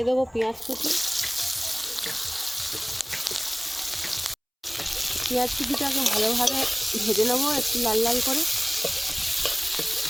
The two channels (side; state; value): both; identical; correlation 1.00